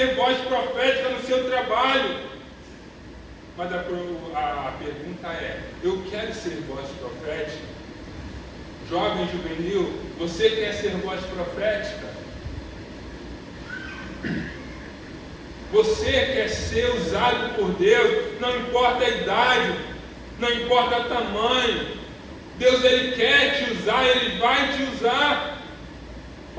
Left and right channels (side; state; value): both; identical; correlation 1.00